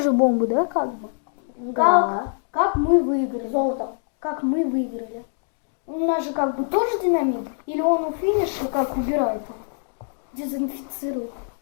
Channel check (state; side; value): silent; right; 63 dB below the other